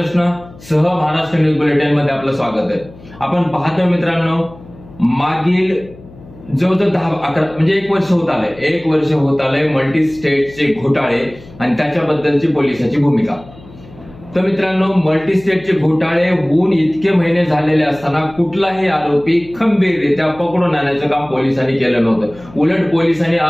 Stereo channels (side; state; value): left; noise; hum, 21 dB below the sound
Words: सह महाराष्ट्र न्यूज बुलेटिन मध्ये आपलं स्वागत आहे। आपण पाहतोय मित्रांनो, मागील जवळजवळ 10-11 म्हणजे 1 वर्ष होत आलंय मल्टी स्टेटचे घोटाळे आणि त्याच्याबद्दलची पोलिसांची भूमिका। तर मित्रांनो, मल्टी स्टेटचे घोटाळे होऊन इतके महिने झालेले असताना कुठलाही आरोपी खंबीररित्या पकडून आणण्याचं काम पोलिसांनी केलं नव्हतं। उलट पोलिसांनी